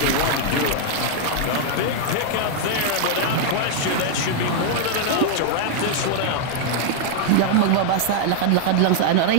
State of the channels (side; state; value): both; different; correlation 0.00